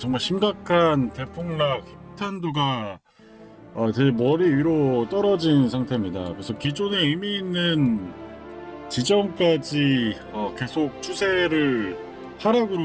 심각한 대폭락 힙탄두가 제 머리 위로 떨어진 상태입니다. 그래서 기존에 의미 있는 지점까지 계속 추세를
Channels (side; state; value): both; identical; correlation 1.00